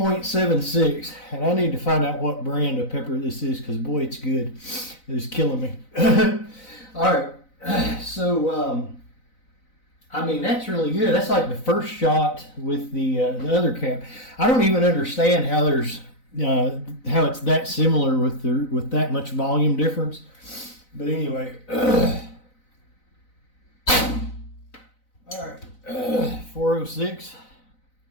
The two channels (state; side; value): late; right; 4.0 ms